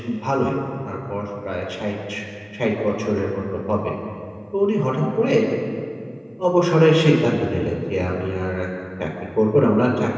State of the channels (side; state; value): both; identical; correlation 1.00